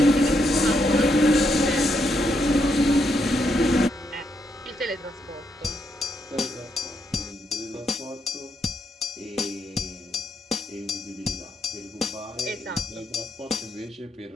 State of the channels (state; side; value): normal; both; correlation 0.77